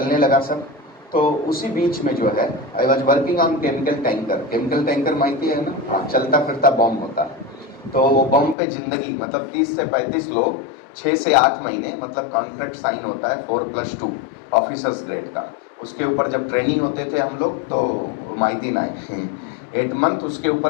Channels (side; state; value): right; drops out; at 8.6 s